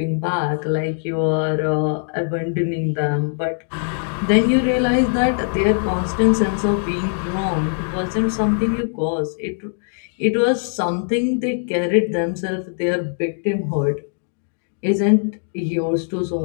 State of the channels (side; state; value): right; silent; digital silence